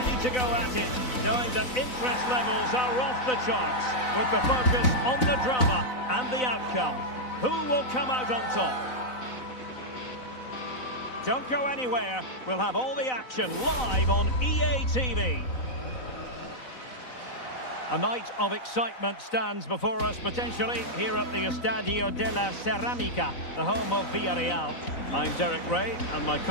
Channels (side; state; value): right; late; 4.0 ms